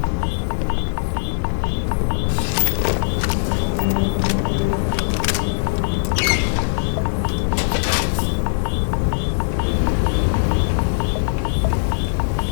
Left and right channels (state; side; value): silent; right; 66 dB below the other